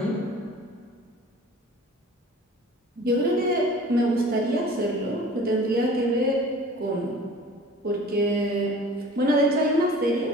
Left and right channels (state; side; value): normal; both; correlation 0.44